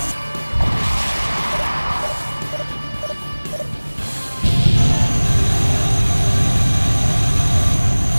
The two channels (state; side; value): inverted; both; correlation -1.00